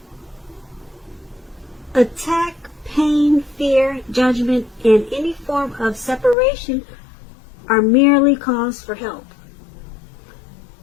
attack, pain, fear, judgment, and any form of separation are merely calls for help.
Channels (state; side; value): drops out; right; at 6.4 s